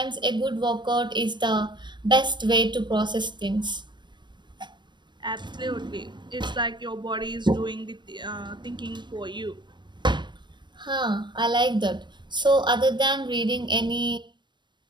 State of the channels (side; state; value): left; late; 0.22 ms